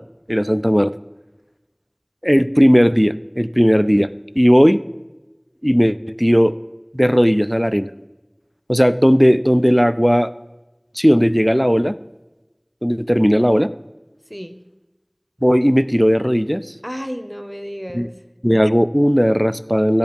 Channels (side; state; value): both; identical; correlation 1.00